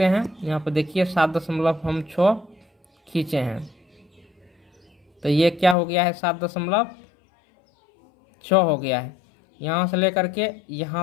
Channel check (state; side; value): drops out; right; at 5.8 s